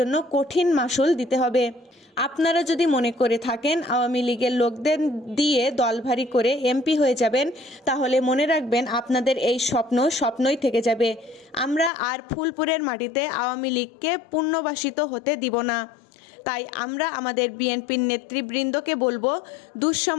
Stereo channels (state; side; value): drops out; right; at 11.9 s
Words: কঠিন মাশুল দিতে হবে। আপনারা যদি মনে করে থাকেন আওয়ামী লীগের লোকদের দিয়ে দল ভারী করে এমপি হয়ে যাবেন, তাহলে মনে রাখবেন আপনাদের এই স্বপ্ন স্বপ্নই থেকে যাবে। আমরা আর ফুলপুরের মাটিতে আওয়ামী লীগকে পুনর্বাসিত হতে দিব না। তাই আমরা আমাদের বিএনপির নেতৃবৃন্দকে বলবো,